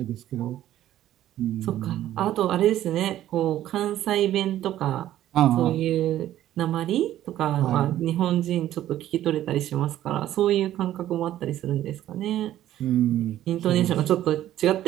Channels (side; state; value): left; quieter; 12.8 dB